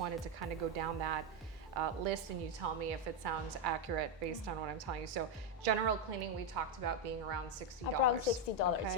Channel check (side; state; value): both; normal; correlation 0.04